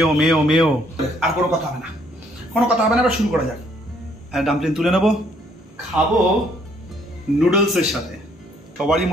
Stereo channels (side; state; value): both; normal; correlation 0.66